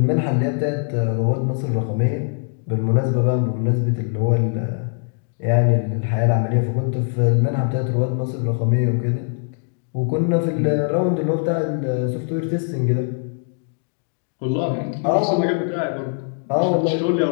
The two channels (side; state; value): right; silent; 56 dB below the other